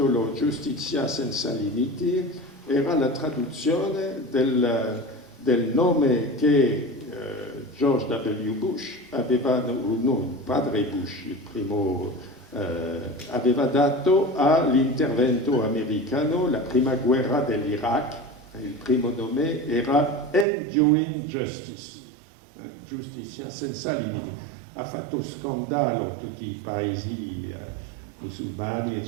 Giustizia senza limiti era la traduzione del nome che George W. Bush aveva, no, il padre Bush, il primo, aveva dato all'intervento americano, la prima guerra dell'Iraq. Il primo nome era Enduring Justice, giustizia senza limiti. Ha fatto scandalo tutti i paesi musulmani,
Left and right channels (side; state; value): left; drops out; at 20.5 s